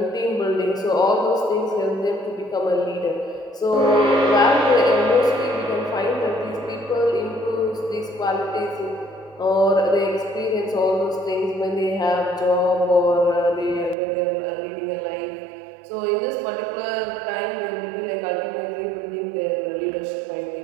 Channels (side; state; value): left; drops out; at 14.0 s